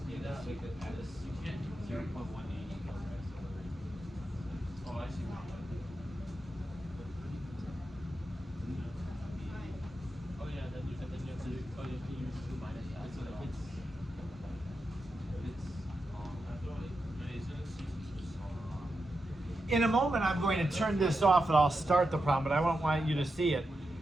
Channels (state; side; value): normal; both; correlation 0.88